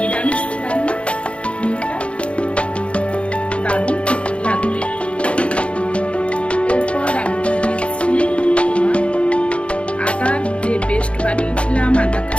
রান্না হিংটা দারুণ লাগবে। এরপর আমি দিচ্ছি আদার যে পেস্ট বানিয়েছিলাম, আদা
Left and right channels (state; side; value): late; right; 0.060 ms